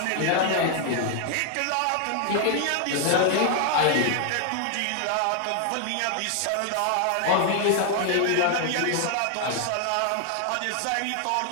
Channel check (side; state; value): both; different; correlation 0.00